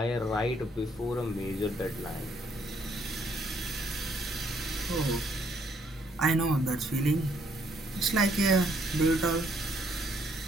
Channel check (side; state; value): both; normal; correlation 0.69